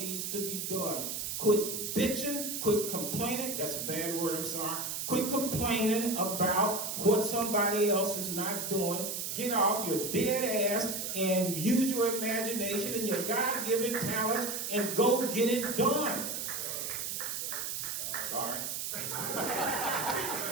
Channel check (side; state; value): right; noise; hiss, 3 dB below the sound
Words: to be done. Quit bitching, quit complaining, that's a bad word, I'm sorry. Quit complaining about what somebody else is not doing. Get off your dead ass and use your imagination and your God-given talents and go get it done. Sorry.